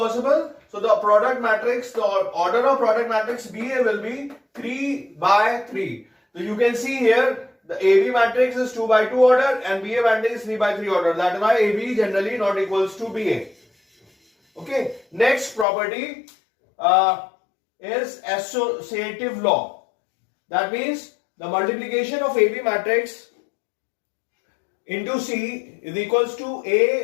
So the product matrix, the order of product matrix BA will be 3 by 3. So you can see here the AB matrix is 2 by 2 order and BA matrix is 3 by 3 order. That is why AB generally not equals to BA. Okay. Next property is associative law. That means the multiplication of AB matrix into C is equals to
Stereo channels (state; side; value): drops out; right; at 15.7 s